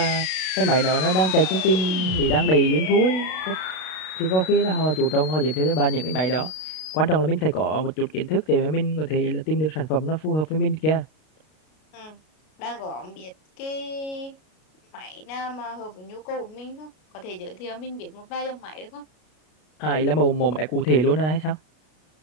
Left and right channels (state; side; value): late; right; 33 ms